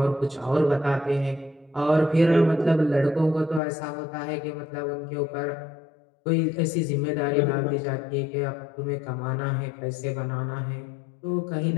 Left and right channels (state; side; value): drops out; right; at 3.6 s